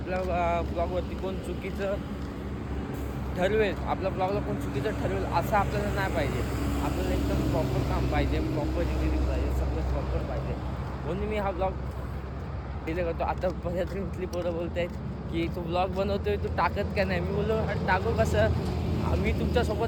ब्लॉगवरती कोण चुकीचं ठरवेल, आपल्या ब्लॉगला कोण चुकीचं ठरवेल असं आपल्याला नाही पाहिजे. आपल्याला एकदम प्रॉपर काम पाहिजे, प्रॉपर एडिटिंग पाहिजे, सगळं प्रॉपर पाहिजे. म्हणून मी हा ब्लॉग डिले करतो. आता बऱ्याच इथली पोरं बोलत आहेत की तू ब्लॉग बनवतोय, तू टाकत का नाही. मी बोललो अरे टाकू कसं, मी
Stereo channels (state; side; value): identical; both; correlation 1.00